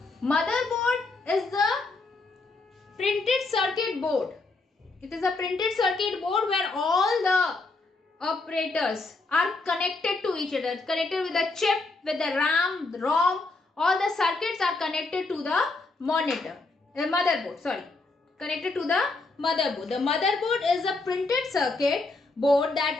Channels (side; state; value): right; quieter; 3.4 dB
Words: Motherboard is the printed circuit board. It is a printed circuit board where all the operators are connected to each other, connected with the chip, with the RAM, the ROM. All the circuits are connected to the motherboard. Sorry, connected to the motherboard. The motherboard is a printed circuit board that